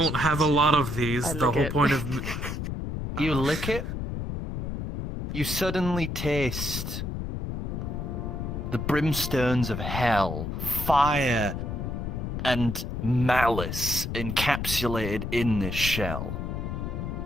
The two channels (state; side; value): noise; left; rumble, 4 dB below the sound